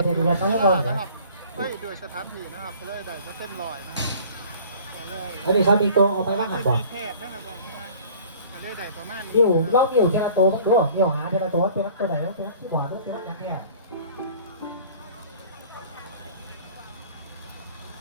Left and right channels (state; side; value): inverted; both; correlation -0.49